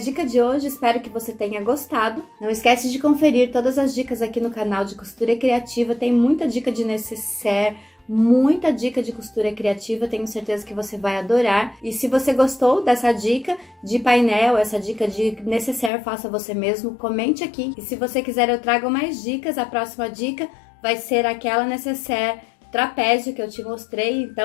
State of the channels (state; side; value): drops out; right; at 15.9 s